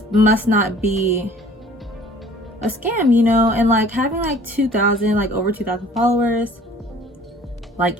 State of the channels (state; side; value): normal; both; correlation 0.51